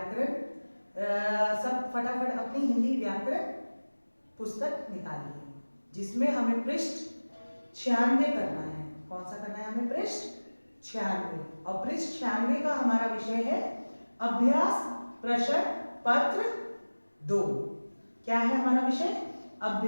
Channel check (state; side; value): inverted; both; correlation -1.00